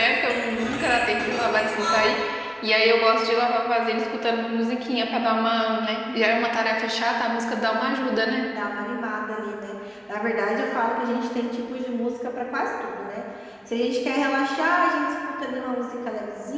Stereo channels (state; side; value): identical; both; correlation 1.00